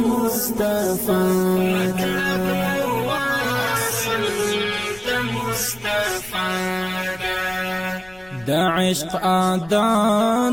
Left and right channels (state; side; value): noise; left; rumble, 24 dB below the sound